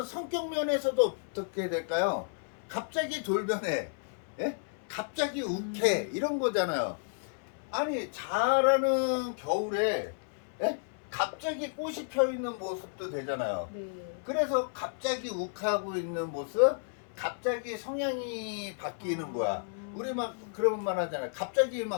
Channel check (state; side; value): silent; right; 56 dB below the other